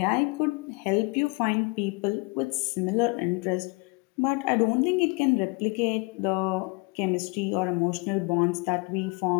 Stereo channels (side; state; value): right; quieter; 30.1 dB